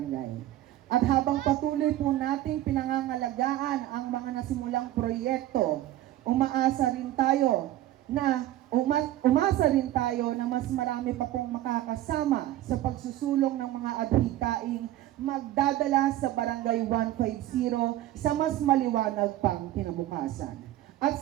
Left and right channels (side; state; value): left; quieter; 14.2 dB